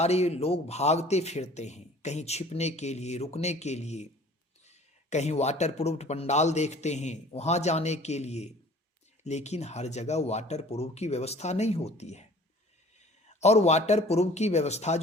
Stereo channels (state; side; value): normal; both; correlation 0.48